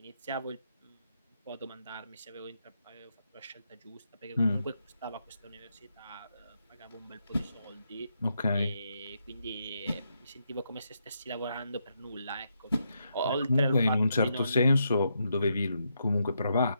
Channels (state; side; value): inverted; both; correlation -0.80